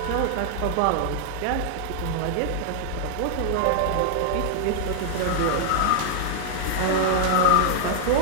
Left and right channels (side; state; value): both; different; correlation -0.01